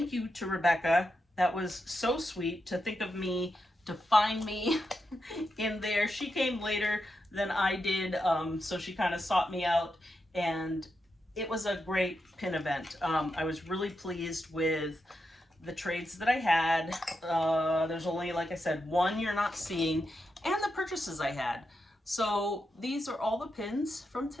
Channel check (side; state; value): both; normal; correlation 0.86